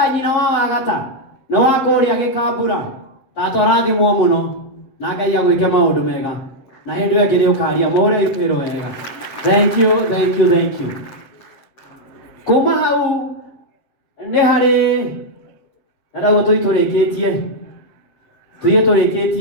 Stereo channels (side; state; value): right; late; 7.7 ms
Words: nyina wa Wagata na wa kũrĩa Gĩkambura. Tata rathimwo mũno na Ngai agwĩke maũndũ mega. Na hĩndĩ ĩyo ĩngĩ nĩũkaria mũhũre irũĩro wega. Thank you, thank you, thank you. Kuma hau nĩ harĩ ndagwo tũrĩkĩtie.